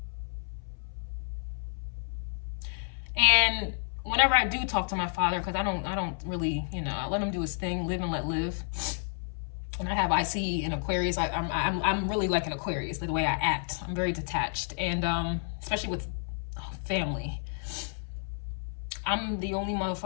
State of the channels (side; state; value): right; silent; 57 dB below the other